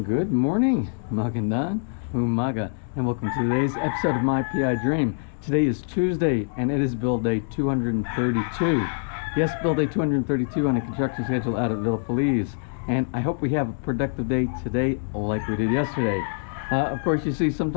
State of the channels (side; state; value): right; silent; 62 dB below the other